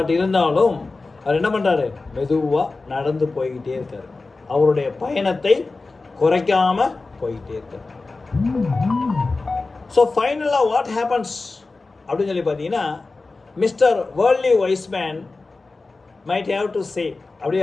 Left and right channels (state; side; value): quieter; right; 3.6 dB